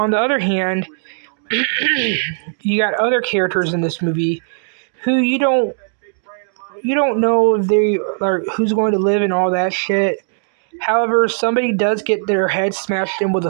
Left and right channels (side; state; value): left; silent; digital silence